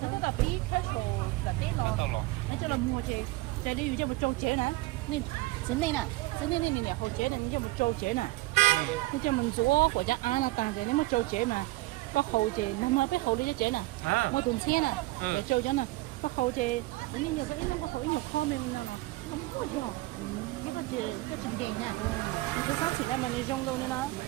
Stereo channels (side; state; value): left; quieter; 20.3 dB